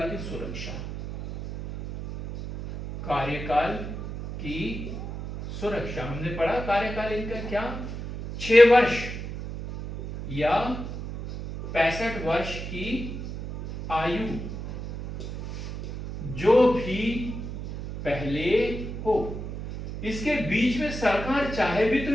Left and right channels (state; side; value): noise; right; hum, 7 dB below the sound